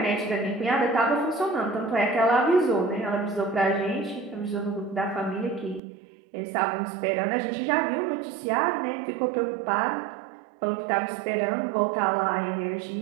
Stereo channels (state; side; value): drops out; left; at 5.8 s